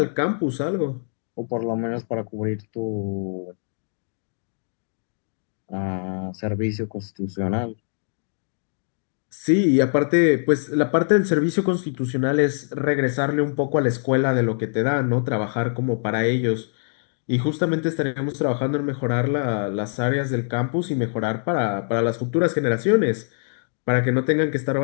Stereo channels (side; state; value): right; silent; digital silence